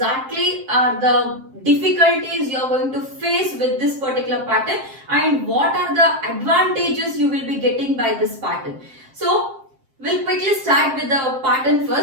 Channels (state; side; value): late; left; 7.6 ms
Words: are the difficulties you are going to face with this particular pattern and what are the advantages you will be getting by this pattern. So we'll quickly start with the pattern